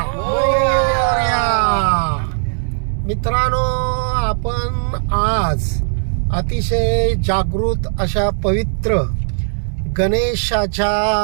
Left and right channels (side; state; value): left; silent; digital silence